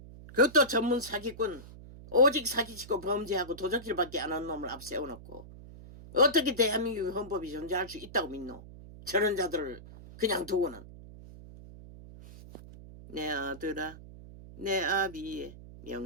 그것도 전문 사기꾼. 오직 사기치고 범죄하고 도적질밖에 안 한 놈을 앞세워놓고 어떻게 대한민국 헌법이 존재할 수 있다고 믿노? 저런 자들을 그냥 두고는. 내 아들아 내 아비의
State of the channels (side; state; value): right; noise; hum, 16 dB below the sound